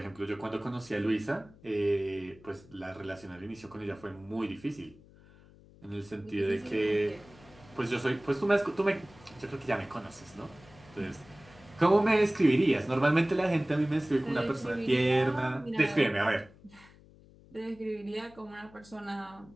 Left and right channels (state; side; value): noise; left; hum, 24 dB below the sound